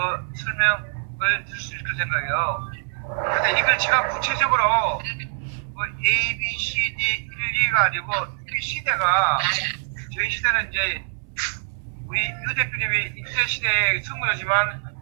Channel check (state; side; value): silent; left; 63 dB below the other